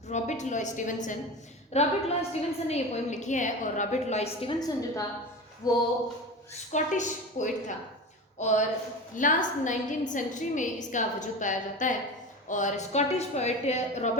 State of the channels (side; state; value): both; normal; correlation 0.29